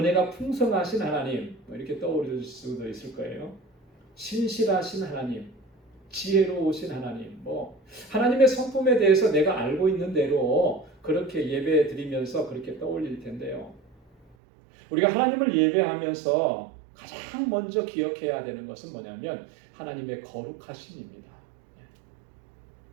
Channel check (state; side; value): drops out; left; at 14.4 s